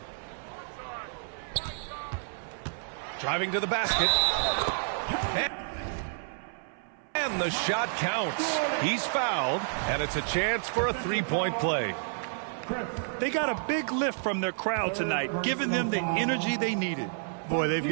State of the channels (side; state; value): left; silent; 58 dB below the other